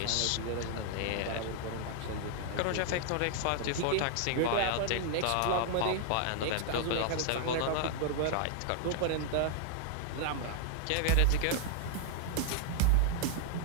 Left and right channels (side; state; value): both; different; correlation 0.00